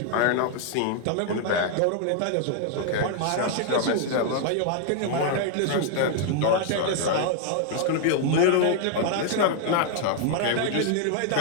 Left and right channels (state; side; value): different; both; correlation 0.00